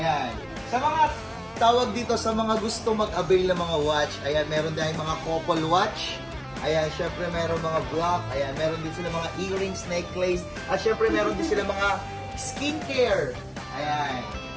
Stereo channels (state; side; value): identical; both; correlation 1.00